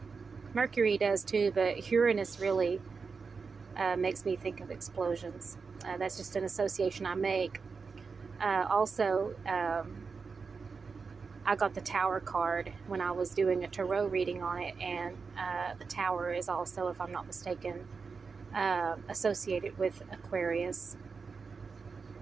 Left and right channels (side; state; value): left; quieter; 5.0 dB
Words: Mercury does too, but Uranus really makes me think of explosions. That's just an association I make. Also, I got the Tower card when I was doing a tarot reading on it, and the Tower is also, if I'm not mistaken, associated with Aquarius.